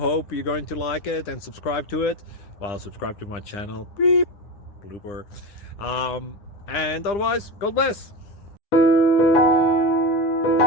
you're going to like it and subscribe to it. Well, subscribe to my channel. Beep. Blooper. And otherwise, God bless.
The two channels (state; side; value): late; right; 9.8 ms